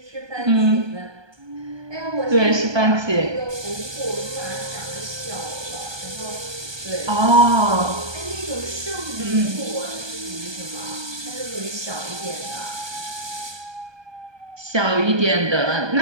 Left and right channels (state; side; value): late; left; 1.2 ms